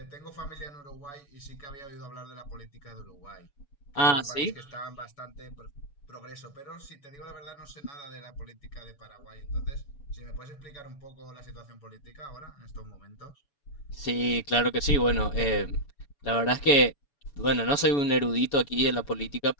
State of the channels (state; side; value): late; right; 7.0 ms